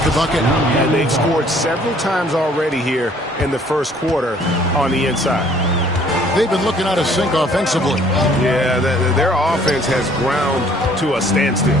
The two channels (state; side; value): normal; both; correlation 0.58